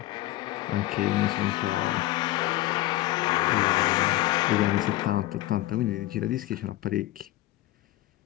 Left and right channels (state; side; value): quieter; right; 16.8 dB